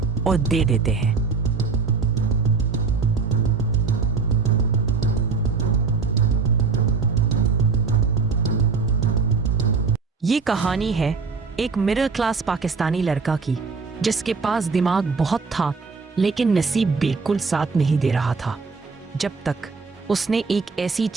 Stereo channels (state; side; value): quieter; left; 4.8 dB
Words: और दे देते हैं। ये कहानी है एक मिडिल क्लास पाकिस्तानी लड़का की, जिसके पास दिमाग बहुत था लेकिन नसीब बिल्कुल साथ नहीं दे रहा था, जब तक उसने एक ऐसी